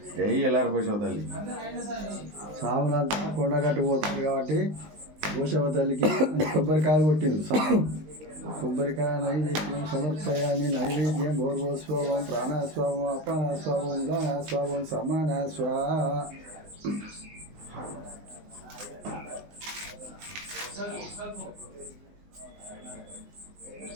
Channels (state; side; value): late; left; 19 ms